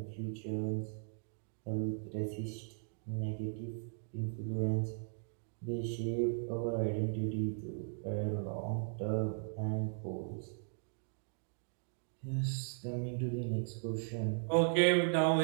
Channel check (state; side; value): silent; left; digital silence